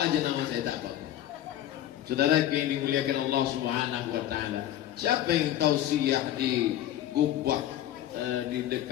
aja nama saya tak tahu. Saudara yang dimuliakan Allah Subhanahu wa taala. Siapa yang tausiah di Gubah di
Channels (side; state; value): right; quieter; 12.4 dB